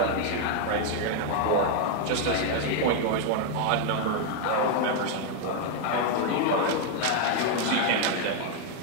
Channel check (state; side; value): different; both; correlation 0.01